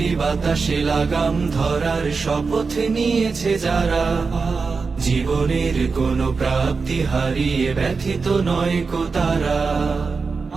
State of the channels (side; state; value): left; quieter; 4.6 dB